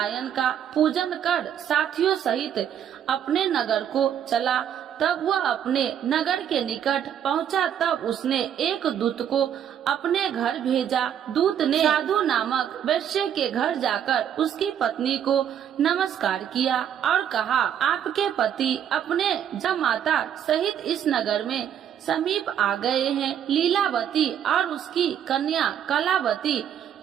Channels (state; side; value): quieter; left; 9.4 dB